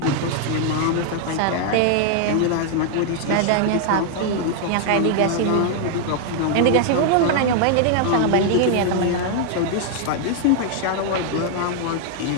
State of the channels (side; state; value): both; different; correlation 0.00